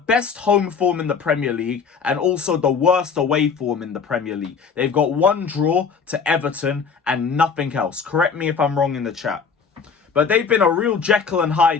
home form in the Premier League and also the worst away form in the Premier League. They've got one draw to Everton and nothing else. Correct me if I'm wrong in the chat. But they've been a real Jekyll and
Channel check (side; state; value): right; quieter; 5.7 dB